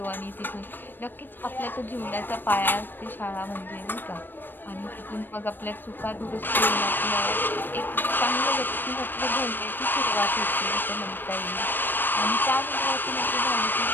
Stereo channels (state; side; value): late; right; 0.094 ms